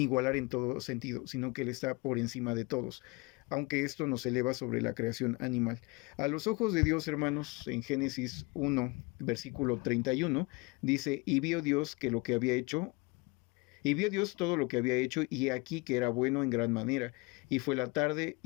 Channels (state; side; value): quieter; right; 26.2 dB